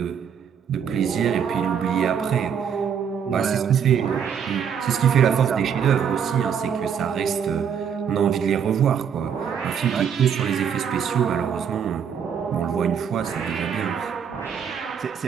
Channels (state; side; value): quieter; left; 7.7 dB